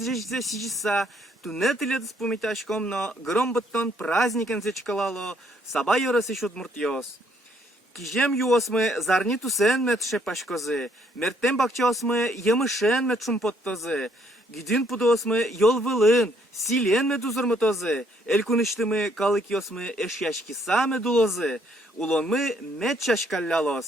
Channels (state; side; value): normal; both; correlation 0.68